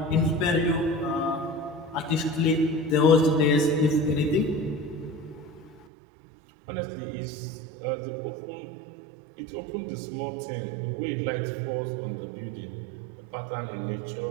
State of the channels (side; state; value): left; drops out; at 5.9 s